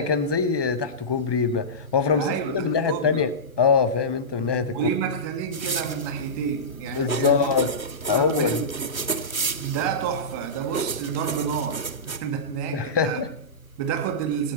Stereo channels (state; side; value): late; right; 1.2 ms